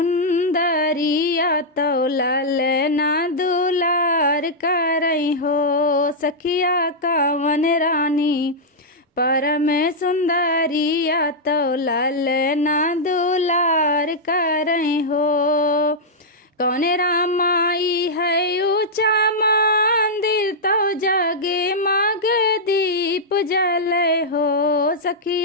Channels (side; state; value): both; normal; correlation -0.07